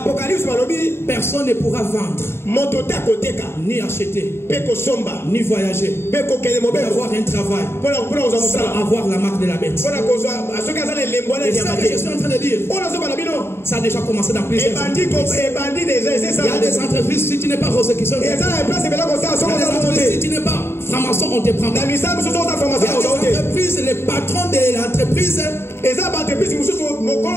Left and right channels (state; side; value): late; right; 0.12 ms